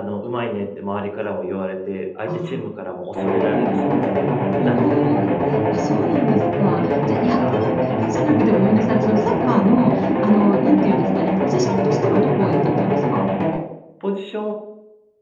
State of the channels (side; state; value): both; identical; correlation 1.00